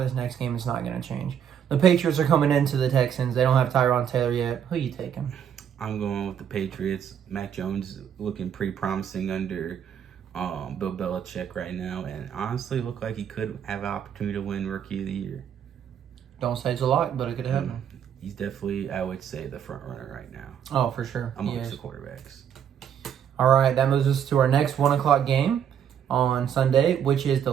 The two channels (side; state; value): left; quieter; 8.7 dB